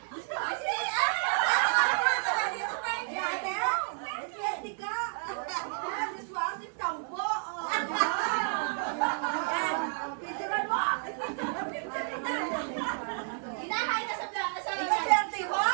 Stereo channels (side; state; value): left; silent; 57 dB below the other